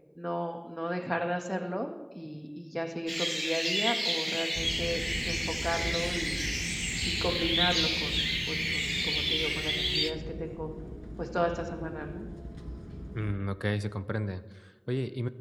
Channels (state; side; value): identical; both; correlation 1.00